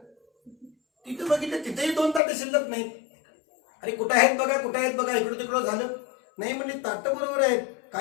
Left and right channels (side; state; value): right; drops out; at 2.2 s